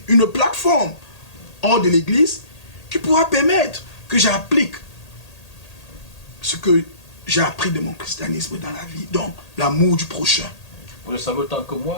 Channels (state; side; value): late; right; 1.8 ms